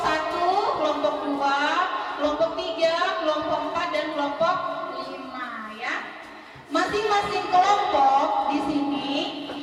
kelompok 2, kelompok 3, kelompok 4 dan kelompok 5, ya. Masing-masing kelompok di sini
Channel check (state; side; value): identical; both; correlation 1.00